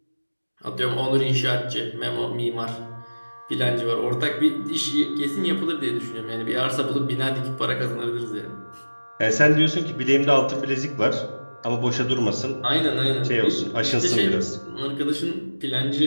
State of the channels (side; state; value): both; inverted; correlation -1.00